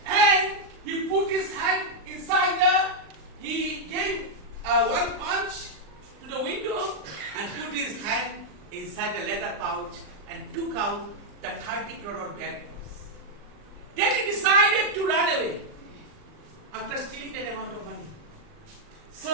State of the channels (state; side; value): late; left; 39 ms